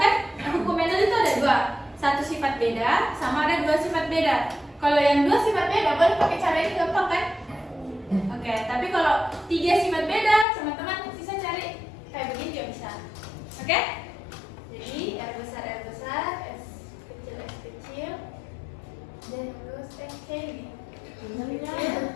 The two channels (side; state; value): right; drops out; at 10.5 s